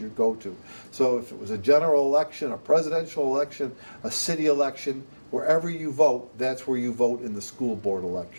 go to. So if it was a general election, a presidential election, a city election, wherever you vote, that's where you vote in the school board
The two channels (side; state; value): both; inverted; correlation -1.00